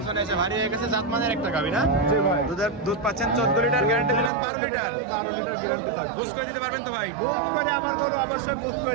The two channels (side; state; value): left; drops out; at 4.3 s